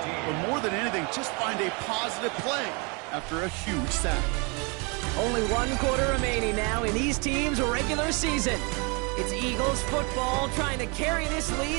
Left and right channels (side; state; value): left; quieter; 31.4 dB